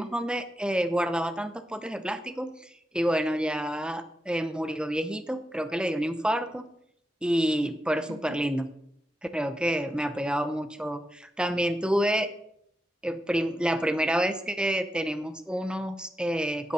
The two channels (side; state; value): both; normal; correlation 0.88